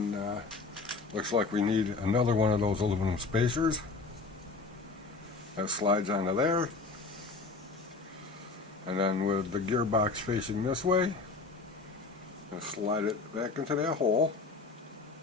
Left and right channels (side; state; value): right; quieter; 4.0 dB